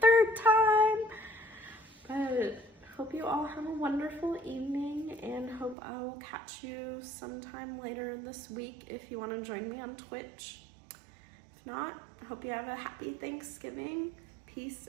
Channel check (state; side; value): drops out; left; at 5.8 s